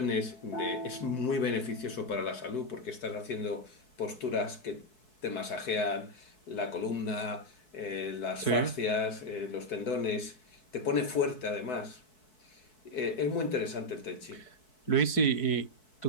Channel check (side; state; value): right; late; 4.6 ms